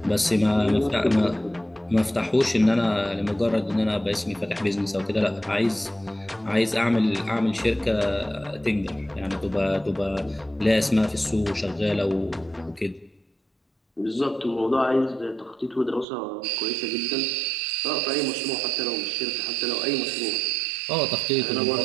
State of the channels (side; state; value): left; drops out; at 16.1 s